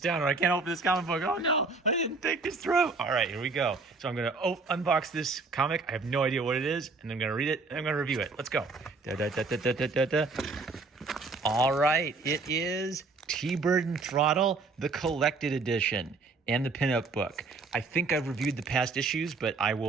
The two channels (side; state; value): left; quieter; 3.9 dB